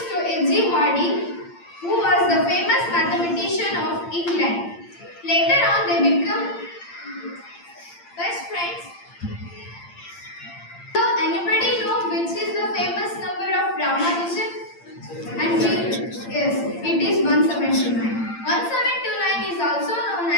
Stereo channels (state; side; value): late; right; 8.8 ms